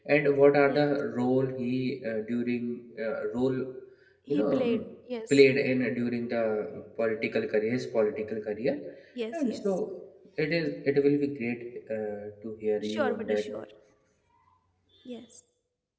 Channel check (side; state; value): both; identical; correlation 1.00